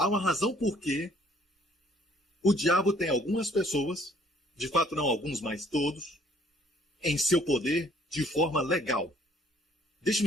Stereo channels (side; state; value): both; normal; correlation 0.60